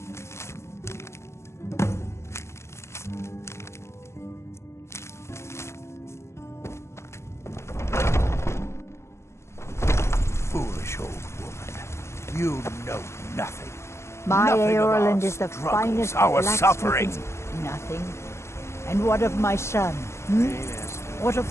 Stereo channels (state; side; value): late; right; 0.13 ms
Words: Foolish old woman. You know nothing. My Nothing of our Eorland is the struggles, finest our blacksmith suffering. in- Nothing. And what of my son? What of